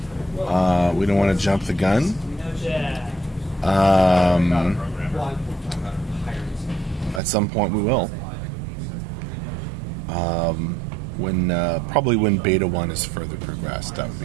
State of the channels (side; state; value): left; drops out; at 7.2 s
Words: We don't want to jump the gun. At some point we will. Probably when Beta 1 is further progressed, that would